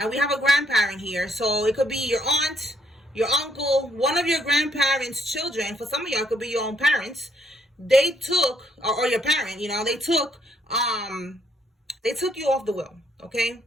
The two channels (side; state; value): both; normal; correlation 0.70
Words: we have a grandparent here, so it could be your aunt, your uncle, one of your grandparents' children. For some of y'all, it could be your own parents. They took, or your parent, you know, they took you off the will, okay?